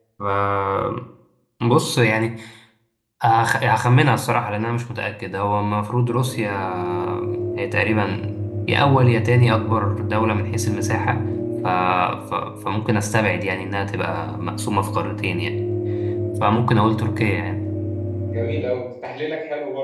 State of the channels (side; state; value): both; identical; correlation 1.00